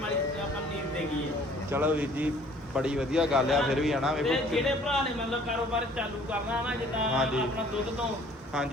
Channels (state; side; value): normal; both; correlation 0.55